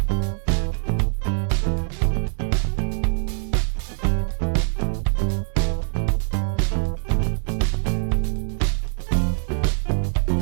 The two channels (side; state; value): left; silent; digital silence